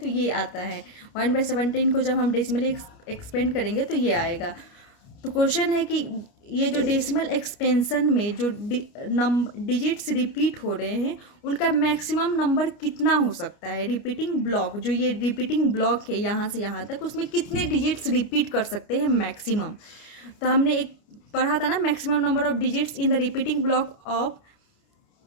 ये आता है। 1/17 को जब हम डेसिमली एक्सपेंड करेंगे तो ये आएगा। तो क्वेश्चन है कि ये जो डेसिमल एक्सपेंशन में जो डिजिट्स रिपीट हो रहे हैं उनका मैक्सिमम नंबर कितना हो सकता है। रिपीटिंग ब्लॉक, जो ये रिपीटिंग ब्लॉक है यहाँ से यहाँ तक, उसमें कितने डिजिट्स रिपीट कर सकते हैं मैक्सिमम। तो हमने एक पढ़ा था ना, maximum number of digits in the repeating block of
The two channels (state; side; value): late; right; 29 ms